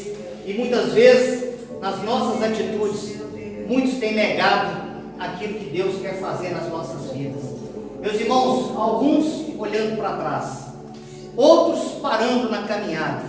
e muitas vezes, nas nossas atitudes, muitos têm negado aquilo que Deus quer fazer nas nossas vidas. Meus irmãos, alguns olhando para trás, outros parando na caminhada,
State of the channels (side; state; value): both; identical; correlation 1.00